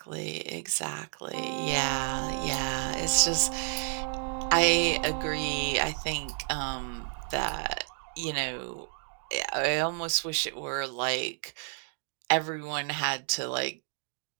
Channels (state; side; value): silent; left; 57 dB below the other